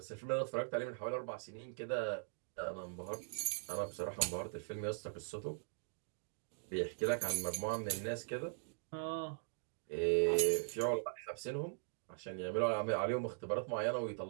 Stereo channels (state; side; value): silent; left; digital silence